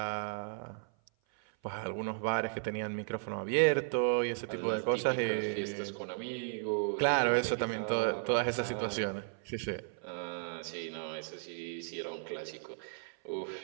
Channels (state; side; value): silent; left; 55 dB below the other